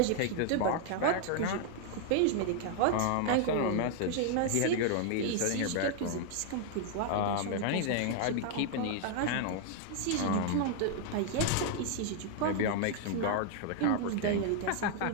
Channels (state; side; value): different; both; correlation 0.00